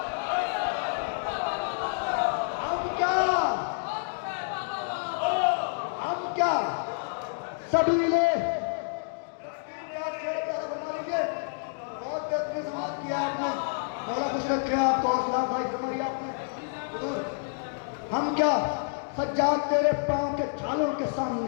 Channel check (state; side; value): silent; right; digital silence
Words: हम क्या सबीले, बहुत बेहतरीन समाज किया आपने, मौला खुश रखे आपको, हौसला भाई फरमाइए आपने। हम क्या सज्जाद तेरे पांव के छालों के